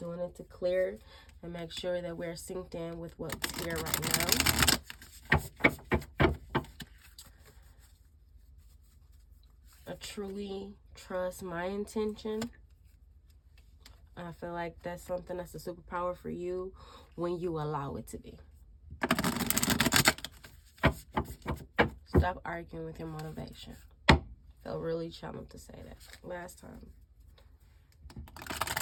it to clear and make sure that we're synced in with what's here right now. I truly trust my intention. I feel like that's something that's a superpower for you when you allow it to be. Stop arguing with your motivation. Felt really challenged to say that last time.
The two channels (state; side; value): identical; both; correlation 1.00